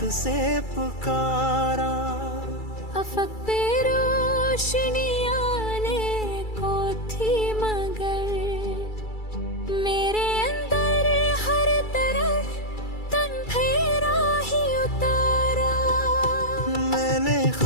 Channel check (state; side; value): late; right; 2.3 ms